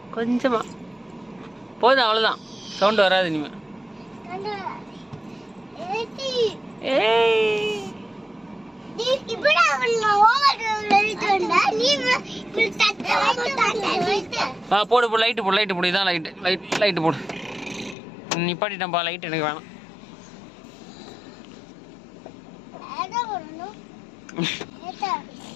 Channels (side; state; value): right; drops out; at 17.9 s